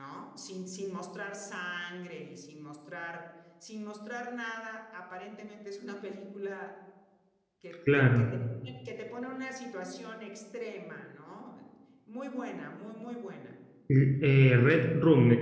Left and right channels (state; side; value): identical; both; correlation 1.00